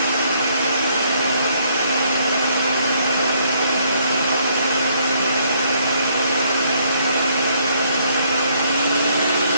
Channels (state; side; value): inverted; both; correlation -0.68